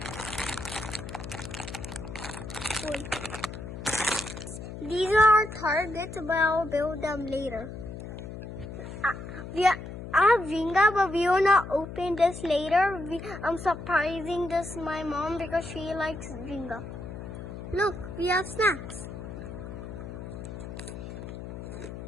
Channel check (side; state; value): left; noise; hum, 10 dB below the sound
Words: These are our targets, but I'll build them later. I have Jenga, but we will not open this later. I'm surprising this my mom because she likes Jenga. Look, we have snacks.